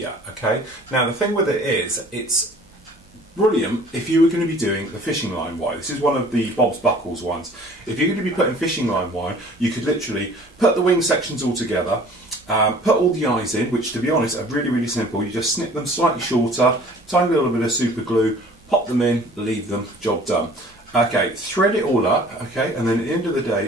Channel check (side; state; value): both; normal; correlation 0.50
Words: okay? Now the thing with it is, it's brilliant if you were going to be doing the fishing line wire. This is one of the Bob's Buckles ones. If you're going to be putting fishing line wire, you could literally put the wing sections all together, put all the eyes in, which to be honest are really, really simple. You just snip them slightly shorter, tiny little bit of super glue, pop them in, leave them, job done. Okay, thread it all up, okay, and then at the end of the